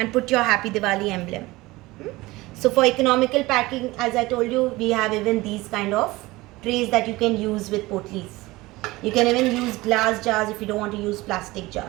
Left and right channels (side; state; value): left; quieter; 20.2 dB